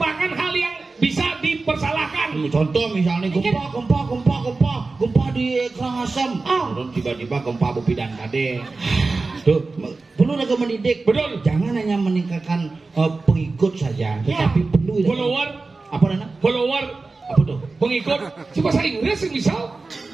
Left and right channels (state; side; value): quieter; left; 3.7 dB